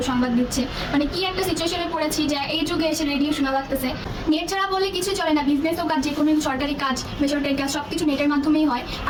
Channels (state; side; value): identical; both; correlation 1.00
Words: সংবাদ দিচ্ছে। মানে কি একটা সিচুয়েশনে পড়েছি যে এই যুগে এসে রেডিও শোনা লাগতেছে। নেট ছাড়া বলে কিছু চলে না, বিজনেস হোক আর যে কোনো সরকারি কাজ বেসরকারি কাজ সবকিছু নেটের মাধ্যমেই হয়।